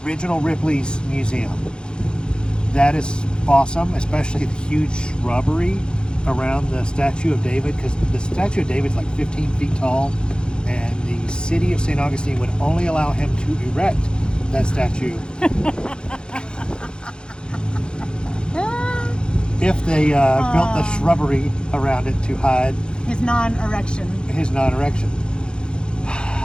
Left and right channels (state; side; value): late; right; 0.050 ms